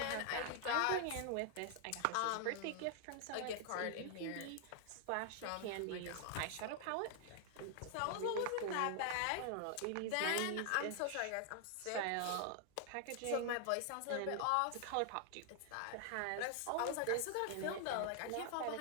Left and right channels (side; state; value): both; different; correlation 0.00